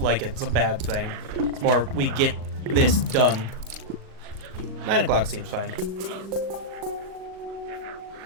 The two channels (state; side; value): late; left; 39 ms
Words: like it's a bad thing. It's more, we get this done. 9 o'clock seems fine.